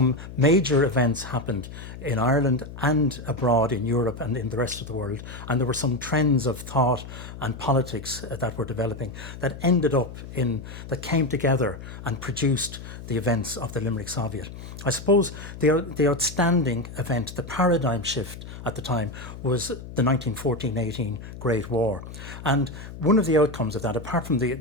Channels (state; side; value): noise; left; hum, 12 dB below the sound